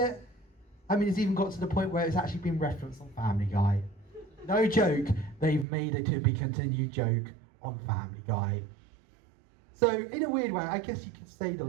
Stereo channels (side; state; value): left; drops out; at 5.7 s